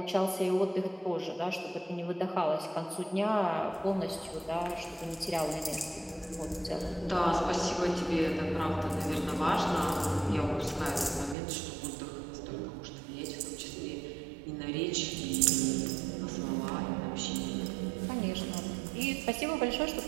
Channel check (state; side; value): drops out; left; at 11.4 s